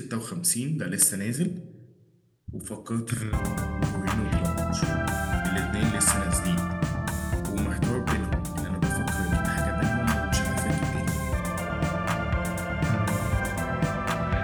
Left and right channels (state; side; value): identical; both; correlation 1.00